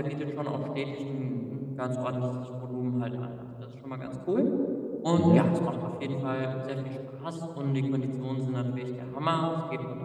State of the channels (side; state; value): both; identical; correlation 1.00